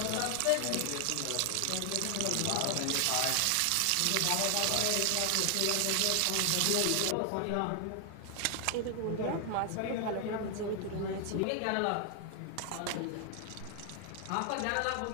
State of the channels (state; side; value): different; both; correlation 0.00